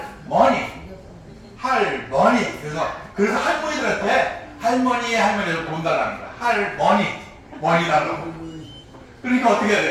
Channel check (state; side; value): identical; both; correlation 1.00